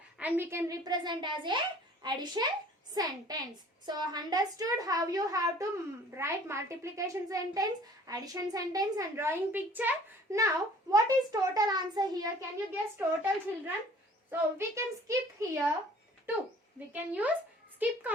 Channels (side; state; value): both; normal; correlation 0.51